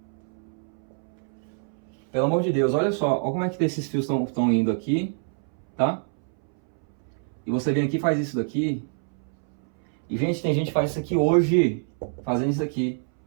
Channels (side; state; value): left; silent; 61 dB below the other